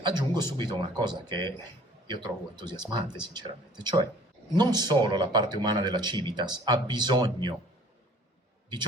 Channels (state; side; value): normal; both; correlation 0.53